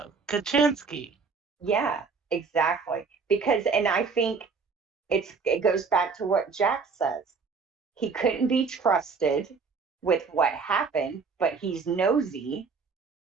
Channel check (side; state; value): left; quieter; 5.0 dB